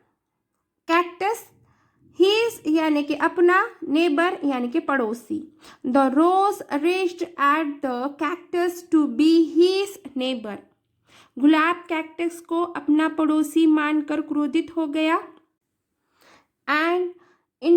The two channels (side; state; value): both; identical; correlation 1.00